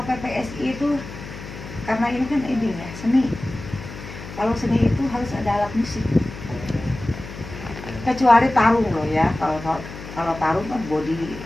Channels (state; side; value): noise; left; hum, 12 dB below the sound